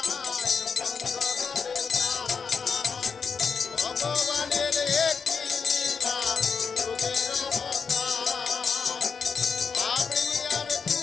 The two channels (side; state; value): right; quieter; 5.7 dB